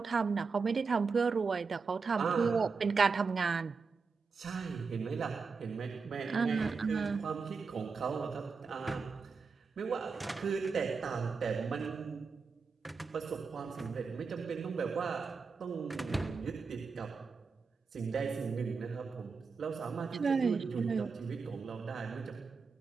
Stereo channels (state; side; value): quieter; left; 4.9 dB